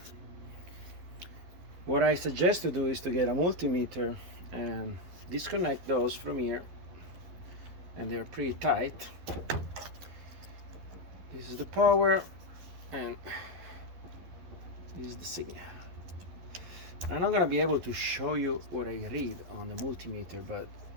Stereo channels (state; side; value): late; left; 12 ms